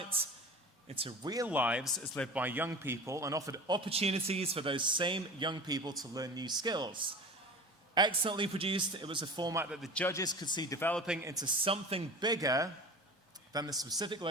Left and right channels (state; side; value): normal; both; correlation 0.35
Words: into real lives as lived by young people and offered opportunities for those same young people to learn new skills. Excellently produced, it was a format that the judges could see developing into something bigger than the specific